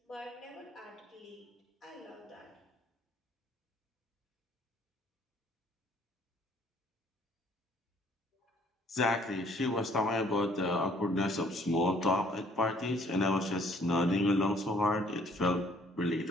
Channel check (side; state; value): both; normal; correlation 0.61